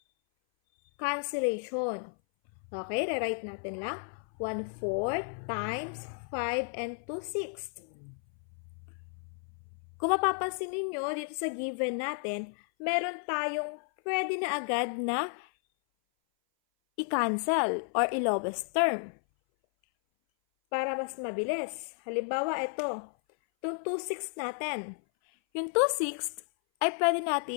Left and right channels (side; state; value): right; silent; 56 dB below the other